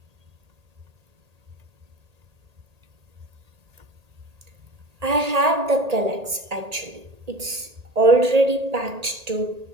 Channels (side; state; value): left; late; 1.8 ms